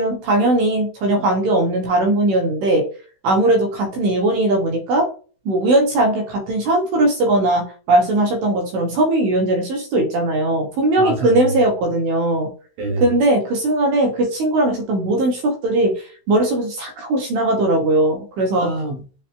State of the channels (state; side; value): late; left; 16 ms